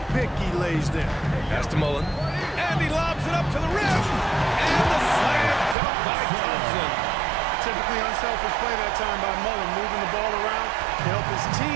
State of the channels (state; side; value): drops out; left; at 5.8 s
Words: pick he lays there. Pass to Mullen. And he lobs it up to the rim. And the slam dunk by Thompson. Typically unselfish play that time by Mullen, moving the ball around to help his